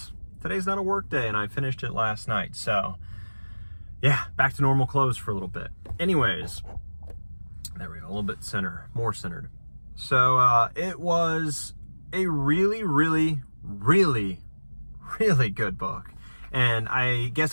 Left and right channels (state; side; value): inverted; both; correlation -1.00